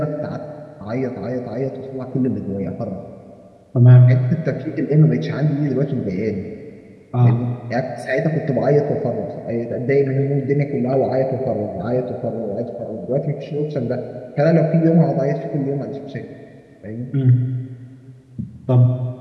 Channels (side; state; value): both; identical; correlation 1.00